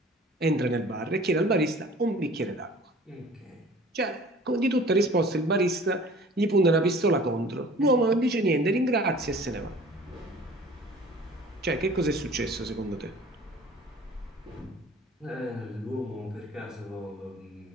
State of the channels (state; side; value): normal; both; correlation 0.47